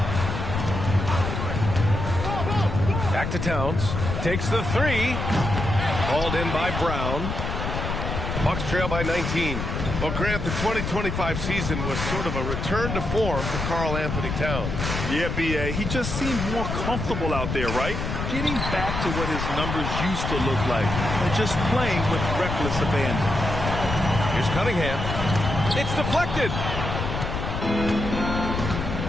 Back to Towns. Takes the 3. Hauled in by Brown. Bucks trail by 19. Well, Grant, the 2025 season was sort of a return to form for Karl-Anthony Towns. Yeah, B.A. He just seemed more comfortable out there, right? Getting back to what his numbers used to look like and just playing with reckless abandon. Here's Cunningham. It's deflected.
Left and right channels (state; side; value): noise; left; rumble, 3 dB below the sound